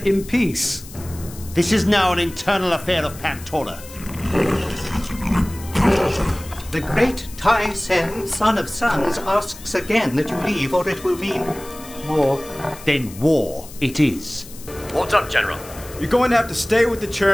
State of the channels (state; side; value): noise; left; hiss, 17 dB below the sound